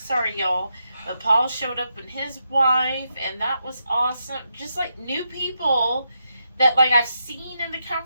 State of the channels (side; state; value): both; inverted; correlation -0.83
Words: y'all. But Paul showed up with his wife, and that was awesome. Just like new people that like I've seen in the